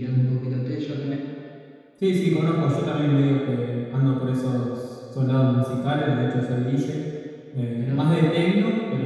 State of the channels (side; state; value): both; identical; correlation 1.00